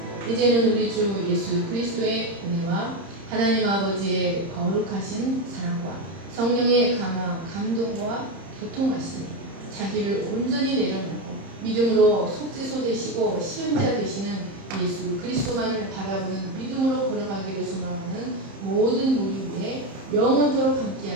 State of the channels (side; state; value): left; late; 30 ms